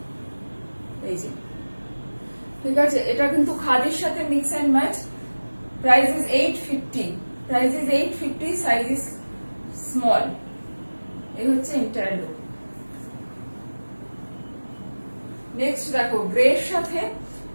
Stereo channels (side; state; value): both; inverted; correlation -1.00